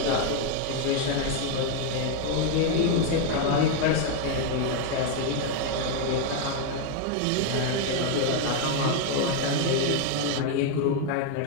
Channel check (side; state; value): both; different; correlation 0.01